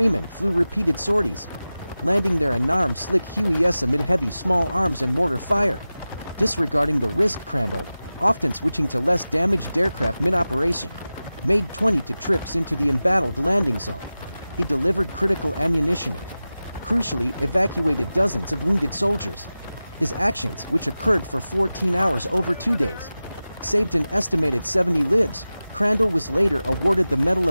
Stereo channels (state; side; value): inverted; both; correlation -0.96